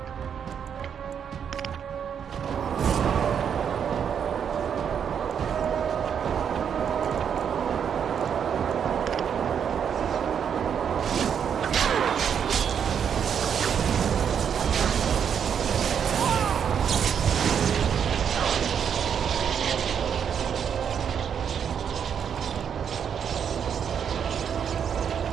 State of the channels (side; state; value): left; quieter; 7.8 dB